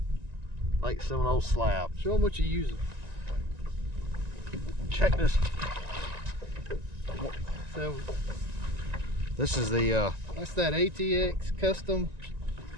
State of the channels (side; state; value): left; late; 1.9 ms